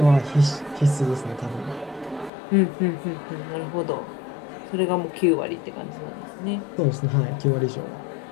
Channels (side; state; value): right; drops out; at 2.3 s